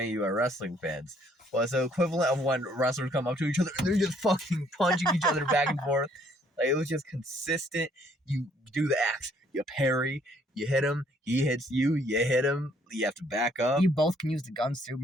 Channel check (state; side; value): normal; both; correlation 0.64